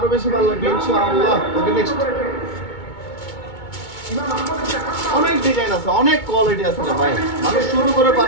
বেশি ভালো লাগবে ইনশাআল্লাহ। ওকে, নেক্সট। অনেক ডিজাইন আছে, অনেক কোয়ালিটি আছে রে ভাই। মানুষ শুরু করে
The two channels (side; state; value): right; late; 2.2 ms